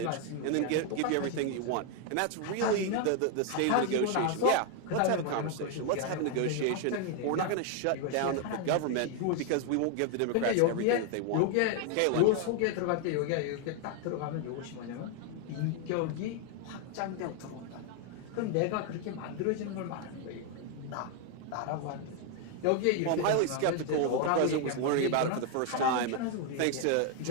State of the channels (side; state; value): both; different; correlation 0.01